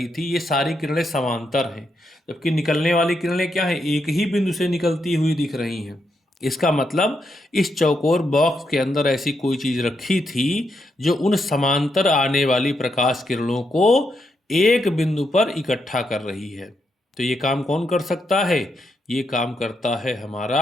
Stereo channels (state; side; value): normal; both; correlation 0.81